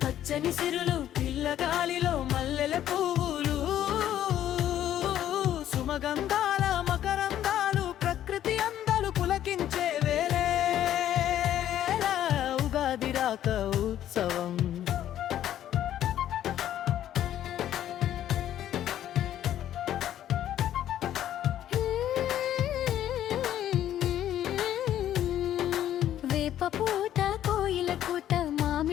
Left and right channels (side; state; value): right; quieter; 11.6 dB